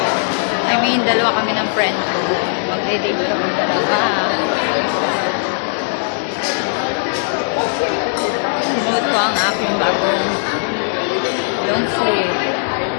I mean, dalawa kami ng friend ko. Magde-date kami dalawa. Sinuot ko ang aking bagong long sleeve.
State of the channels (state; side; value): silent; right; 62 dB below the other